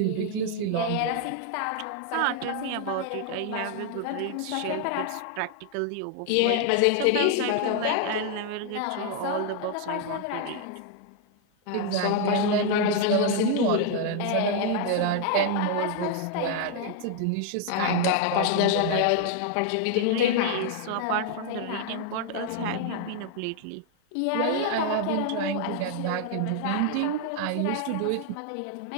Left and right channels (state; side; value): different; both; correlation 0.00